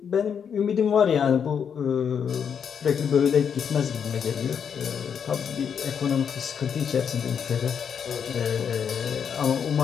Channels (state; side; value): quieter; right; 7.4 dB